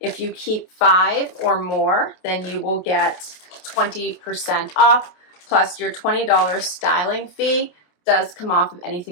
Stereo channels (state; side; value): late; right; 28 ms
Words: you keep 5 or more, then you will get 20% off, plus your $20 styling fee does come off of